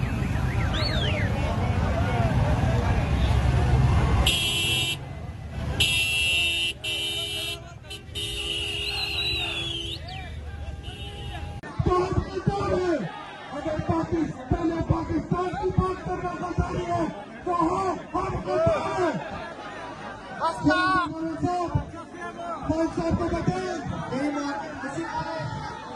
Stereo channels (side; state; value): both; identical; correlation 1.00